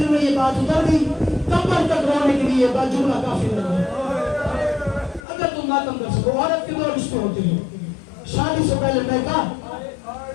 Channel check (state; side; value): drops out; right; at 5.2 s